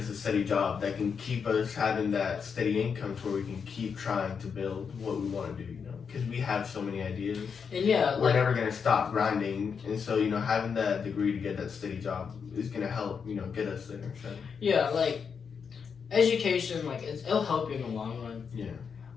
a steady job that can keep us having that steady income to where we can keep trying to build what we want to do, you know, because we have so many ideas. And yeah, We're never gonna stop grinding, and so you know having that degree to get that steady job is gonna help, you know, get us there. So. Yeah, like education, like it'll help you in the long run. Yeah.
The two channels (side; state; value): right; quieter; 6.3 dB